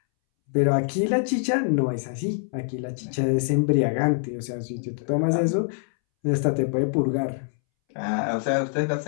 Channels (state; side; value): silent; right; 62 dB below the other